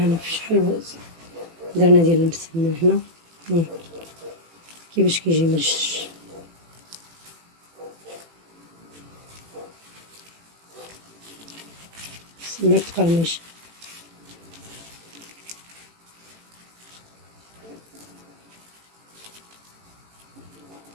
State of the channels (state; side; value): late; left; 18 ms